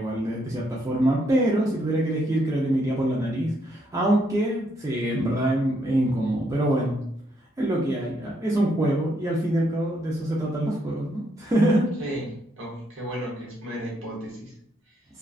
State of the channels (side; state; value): both; normal; correlation 0.74